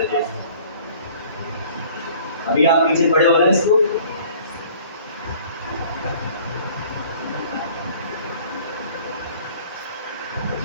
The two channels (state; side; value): inverted; both; correlation -0.52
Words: अभी आप पीछे पड़े हो रहे हैं इसको,